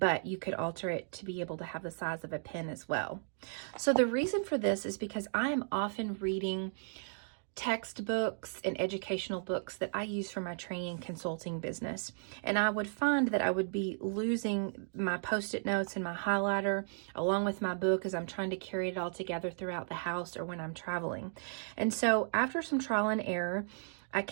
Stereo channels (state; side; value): silent; left; digital silence